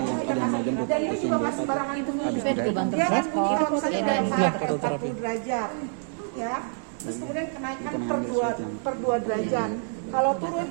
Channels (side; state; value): left; silent; digital silence